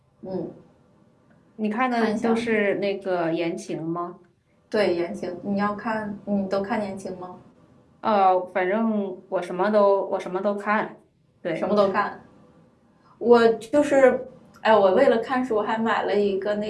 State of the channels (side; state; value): both; identical; correlation 1.00